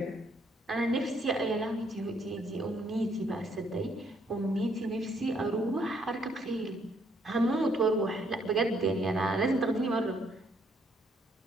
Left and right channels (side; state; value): both; normal; correlation 0.69